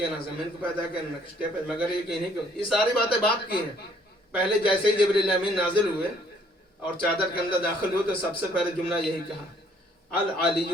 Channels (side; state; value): both; normal; correlation 0.63